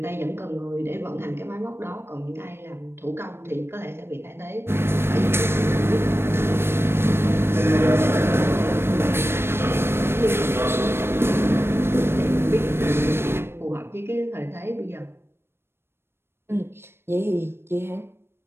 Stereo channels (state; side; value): late; left; 0.12 ms